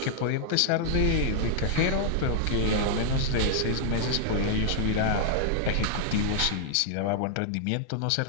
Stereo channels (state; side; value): different; both; correlation -0.01